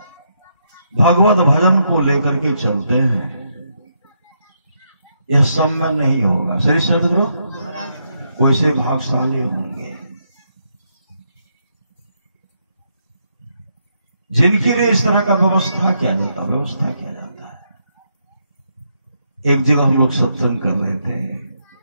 भगवत भजन को लेकर के चलते हैं, यह सब में नहीं होगा। श्री सदगुरु वैसे भागशाली होंगे जिनके लिए इस तरह का व्यवस्था किया जाता है। एक जगह हम लोग सत्संग कर रहे थे,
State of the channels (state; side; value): inverted; both; correlation -0.79